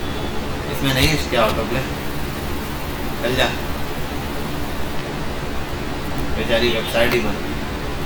इसमें, नहीं इसके ऑटो प्ले, चल जा, बेचारी वेबसाइट ही बन गई।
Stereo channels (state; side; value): identical; both; correlation 1.00